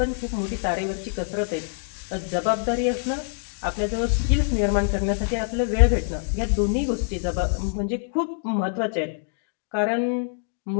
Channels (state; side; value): silent; right; digital silence